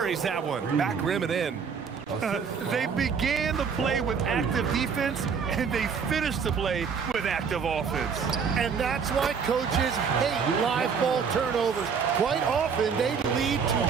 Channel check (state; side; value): quieter; left; 6.2 dB